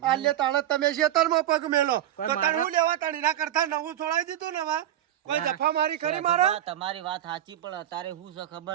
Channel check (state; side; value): quieter; left; 12.1 dB